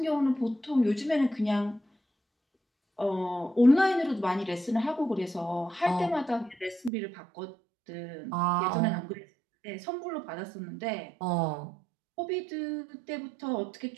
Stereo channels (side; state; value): left; drops out; at 6.9 s